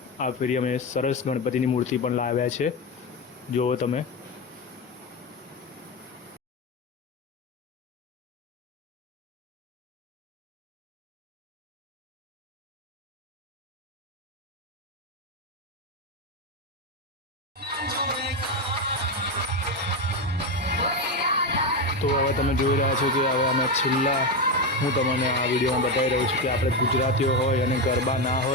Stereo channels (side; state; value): both; normal; correlation 0.12